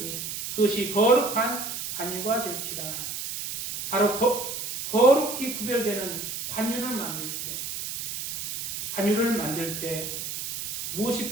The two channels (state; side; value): noise; right; hiss, 5 dB below the sound